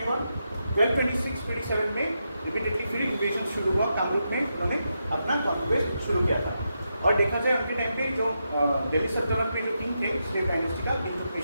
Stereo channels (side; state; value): both; inverted; correlation -0.85